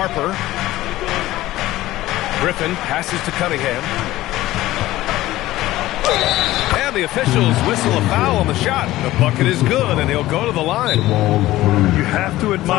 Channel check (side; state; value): right; quieter; 16.2 dB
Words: Griffin passes to Cunningham. And the officials whistle a foul on the shot. The bucket is good, and he'll go to the line. You have to